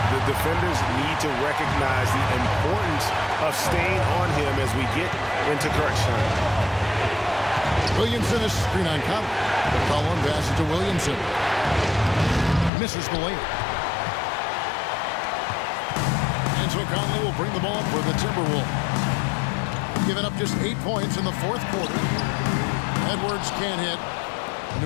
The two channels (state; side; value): drops out; right; at 12.7 s